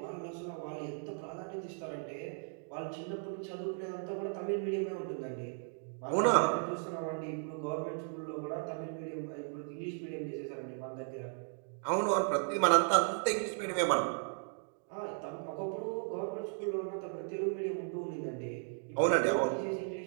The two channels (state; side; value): silent; left; 54 dB below the other